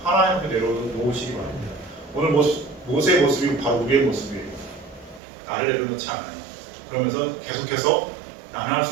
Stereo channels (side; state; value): left; drops out; at 5.2 s